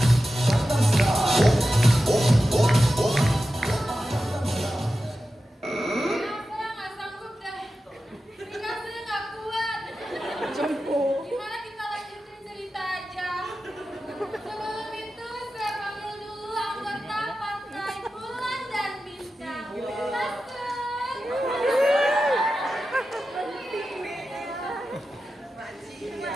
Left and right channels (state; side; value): normal; both; correlation 0.92